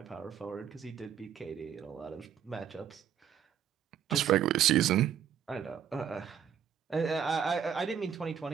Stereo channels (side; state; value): left; quieter; 8.6 dB